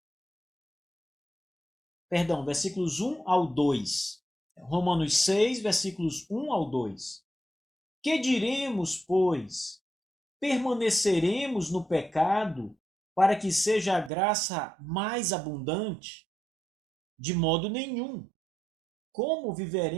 Perdão, versículos 1 ao 2. Romanos 6, versículos 1 ao 2. Que diremos, pois? Permaneceremos no pecado para que seja a graça mais abundante? De modo nenhum. Como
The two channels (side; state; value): left; drops out; at 14.1 s